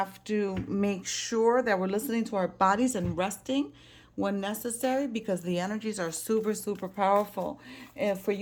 to make sure that we're listening to our bodies and resting when necessary, because the energies are super powerful. And for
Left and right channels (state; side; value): identical; both; correlation 1.00